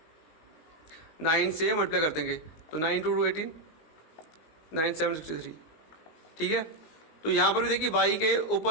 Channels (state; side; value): late; right; 19 ms